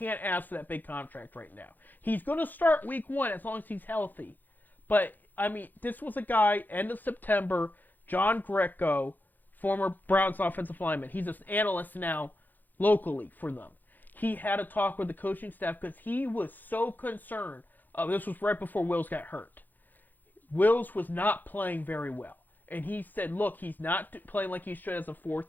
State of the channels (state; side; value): late; right; 0.086 ms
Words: ask for that big contract right now. He's going to start week 1 as long as he's healthy. But, I mean, this was a guy, end of September, John Greco, former Browns offensive lineman. He's an analyst now locally for them. He had a talk with the coaching staff because he was so concerned. This was right before Wills got hurt. Wills was not playing very well. And he said, look, he's not playing like he should as a